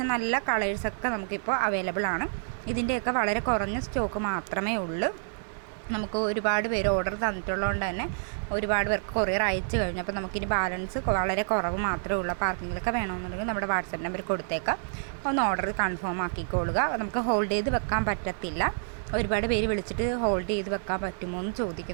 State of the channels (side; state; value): left; silent; 59 dB below the other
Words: നല്ല കളേഴ്സൊക്കെ നമുക്കിപ്പോൾ അവൈലബിൾ ആണ്. ഇതിൻ്റെയൊക്കെ വളരെ കുറഞ്ഞ സ്റ്റോക്ക് മാത്രമേ ഉള്ളൂ. നമുക്ക് ഒരുപാട് പേര് ഓർഡർ തന്നിട്ടുള്ളതുകൊണ്ട് തന്നെ ഒരുപാട് പേർക്ക് കൊറിയർ അയച്ചു കഴിഞ്ഞു. അപ്പോൾ നമുക്കിനി ബാലൻസ് വളരെ കുറവ് മാത്രമേ ഉള്ളൂ. അപ്പോൾ ആർക്കെങ്കിലുമൊക്കെ വേണമെന്നുണ്ടെങ്കിൽ നമ്മുടെ വാട്സപ്പ് നമ്പർ കൊടുത്തേക്കാം. ഒന്ന് ഓർഡർ കൺഫേം ആക്കിക്കൊള്ളുക. നമുക്ക് ഹോൾഡ് ചെയ്ത് വെക്കാൻ പറ്റത്തില്ല. ഒരുപാട് പേര് വിളിച്ചിട്ട് ഹോൾഡ് ചെയ്ത് വെക്കാൻ പറ്റുമോ എന്ന്